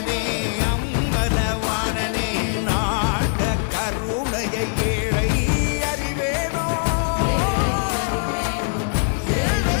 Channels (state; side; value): silent; right; digital silence